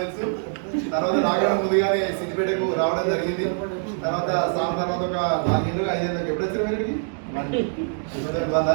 తర్వాత రావడం ముందుగానే సిద్దిపేటకు రావడం జరిగింది. తర్వాత సార్ తర్వాత ఒక 4 ఏళ్ళు 5 ఏళ్ళకి ఎప్పుడు వచ్చారు మీరుకి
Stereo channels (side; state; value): left; silent; 63 dB below the other